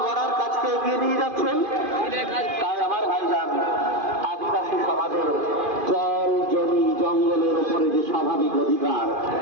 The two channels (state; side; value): late; left; 2.5 ms